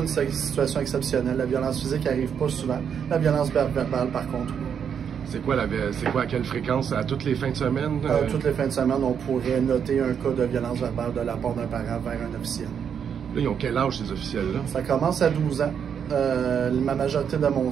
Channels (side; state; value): left; quieter; 7.7 dB